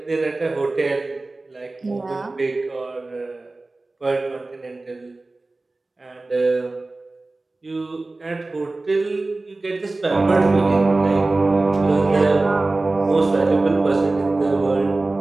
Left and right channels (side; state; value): left; quieter; 3.2 dB